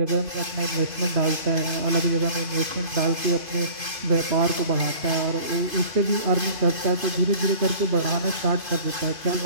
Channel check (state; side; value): late; left; 2.5 ms